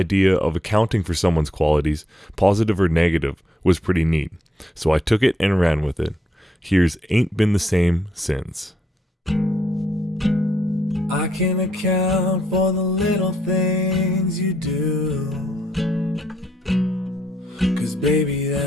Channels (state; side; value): normal; both; correlation 0.75